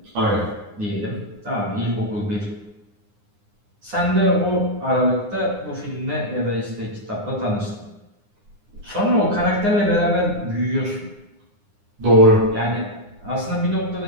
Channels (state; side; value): late; left; 9.7 ms